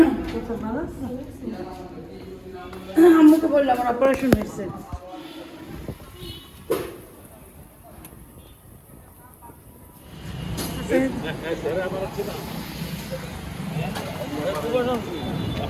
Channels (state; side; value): identical; both; correlation 1.00